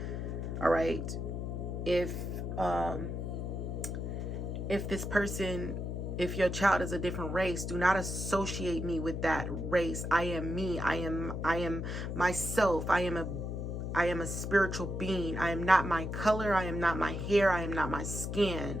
All right. If this person, if your child is a different race, do not associate me with that race. I am me. I am myself. I am a spiritual being. I am not my color. I am not my hair. I am not my skin.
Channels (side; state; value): left; noise; hum, 4 dB below the sound